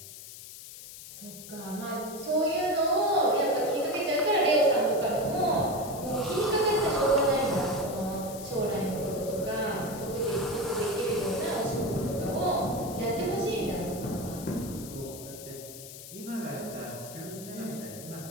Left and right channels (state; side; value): noise; left; hiss, 14 dB below the sound